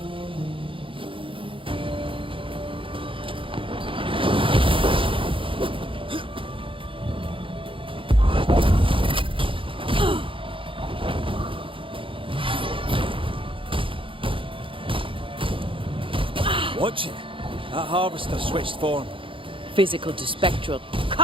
Watch it. That harvester switched form. Physical to spectral.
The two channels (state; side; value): late; left; 0.25 ms